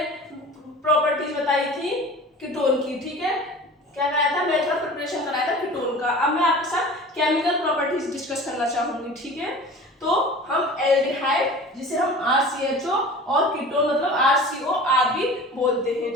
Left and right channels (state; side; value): normal; both; correlation 0.39